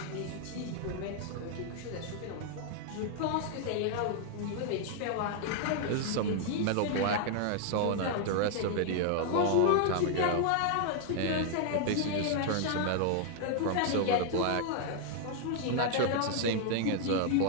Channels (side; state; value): both; different; correlation 0.00